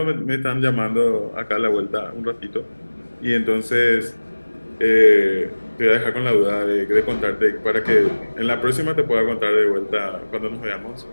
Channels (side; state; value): both; inverted; correlation -1.00